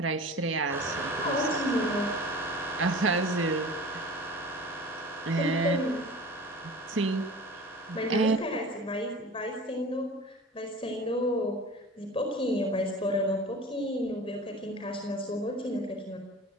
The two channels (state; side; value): normal; both; correlation 0.39